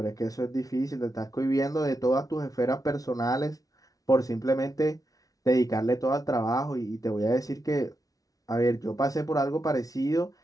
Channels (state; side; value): late; right; 0.18 ms